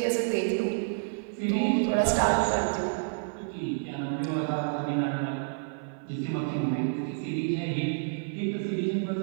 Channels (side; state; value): left; silent; 55 dB below the other